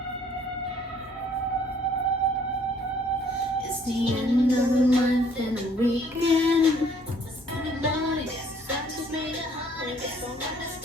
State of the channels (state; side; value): normal; both; correlation 0.61